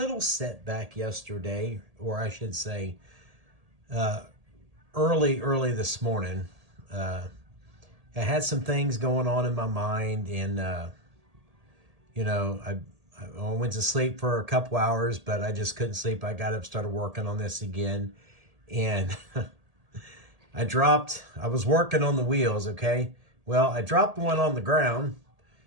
setback yesterday, or I should say early this morning. I had some things going on in my mind, and I went to sleep for a couple hours, but I just couldn't sleep. I got up, started working on this again, and I was working on the wheels, okay? Well, I dropped one on the ground,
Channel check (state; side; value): late; left; 1.8 ms